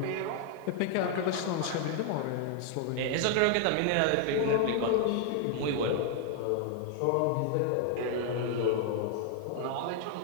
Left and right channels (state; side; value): different; both; correlation 0.00